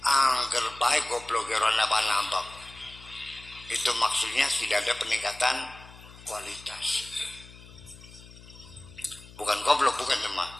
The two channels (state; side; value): noise; left; hum, 19 dB below the sound